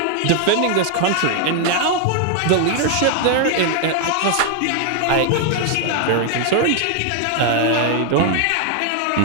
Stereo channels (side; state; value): both; different; correlation 0.00